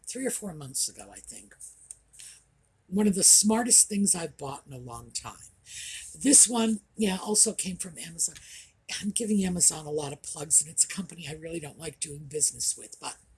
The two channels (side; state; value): both; identical; correlation 1.00